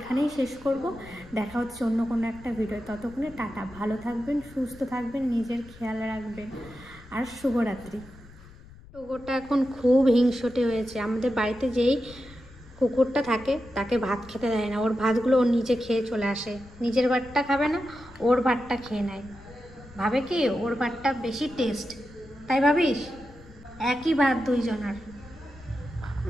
শেষ করব। দেখা হচ্ছে অন্য কোনো একটা ভিডিও। ততক্ষণে টাটা, ভালো থাকবেন, সুস্থ থাকবেন, নিজের খেয়াল রাখবেন, আর শুভরাত্রি। টোগোটা এখন খুব হিংসটে হয়েছে। আমাদের বাড়িতে যেই কুকুরটা থাকে, তাকে ভাত খেতে দেয় না, ওর ভাতগুলো ওর নিচে খেয়ে চলে আসে, নিজের ভাতটা খাবে না, ওর ভাতটা খেয়ে নেয়, ভাবে কি ওর ভাতটা বেশি টেস্ট, তাই ভাবিস? একই ভাত দুইজনার।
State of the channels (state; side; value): noise; left; rumble, 21 dB below the sound